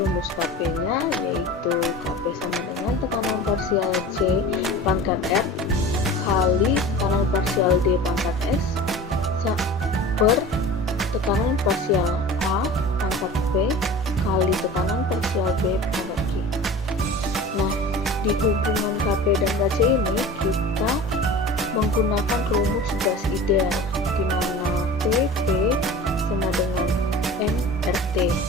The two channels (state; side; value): normal; both; correlation 0.37